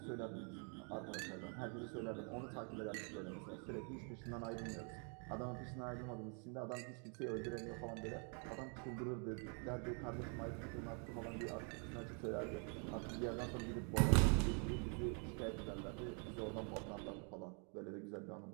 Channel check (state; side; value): quieter; left; 39.4 dB